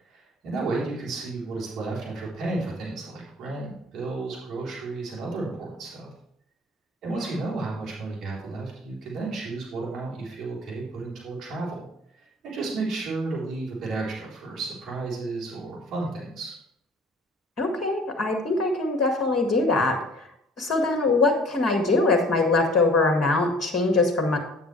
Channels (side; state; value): both; normal; correlation 0.50